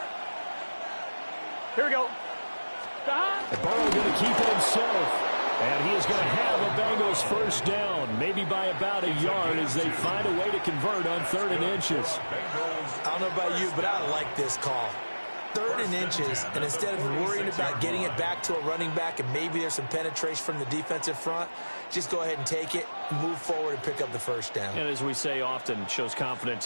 Here we go. And Burrow going to keep it himself. And he is going to have a Bengals first down, maybe by about a yard as they find a way to convert on 3rd and inches. I don't know about you, but I like this call. 3rd and inches, and instead of worrying about getting it back to a running back and maybe there's some penetration from the defensive front, just go ahead and take it, move forward, and pick up the first down. And as we say often, shows confidence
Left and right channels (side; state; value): both; inverted; correlation -1.00